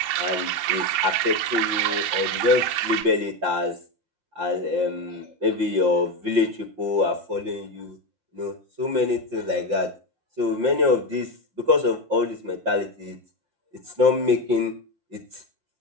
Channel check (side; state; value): left; late; 5.8 ms